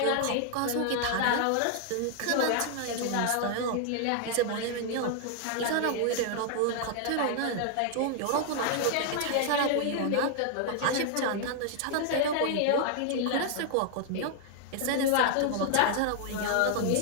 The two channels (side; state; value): both; different; correlation 0.00